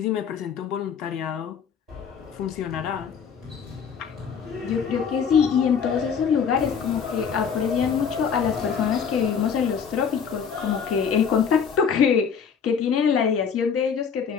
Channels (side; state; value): right; quieter; 6.8 dB